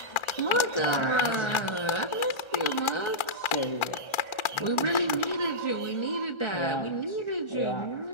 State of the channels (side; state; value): right; late; 1.4 ms